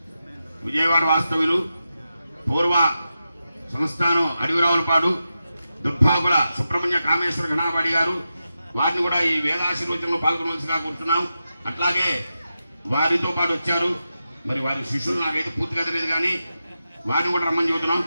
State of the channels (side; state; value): both; inverted; correlation -0.90